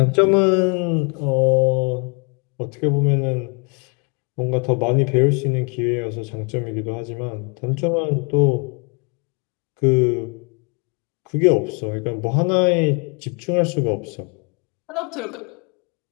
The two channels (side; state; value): right; quieter; 35.4 dB